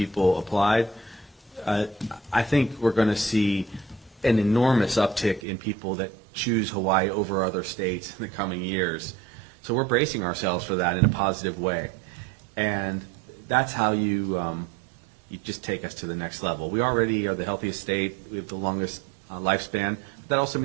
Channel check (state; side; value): drops out; left; at 5.4 s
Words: applied. I think we're going to see an enormous uptick in people that choose Hawaii over other states in the coming years. So we're bracing ourselves for that in a positive way. And that's how you just take us to the next level. We already are the healthiest state. We have the longest lifespan. But that also